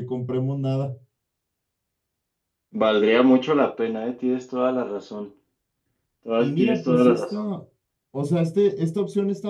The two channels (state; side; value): identical; both; correlation 1.00